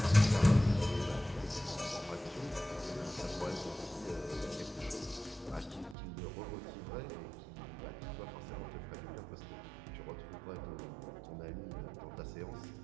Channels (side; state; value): left; drops out; at 6.0 s